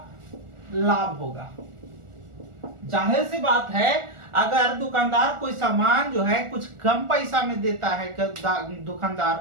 लाभ होगा। जाहिर सी बात है, अगर दुकानदार कोई सामान जो है कुछ कम पैसा में देता है,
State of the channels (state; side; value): late; left; 1.4 ms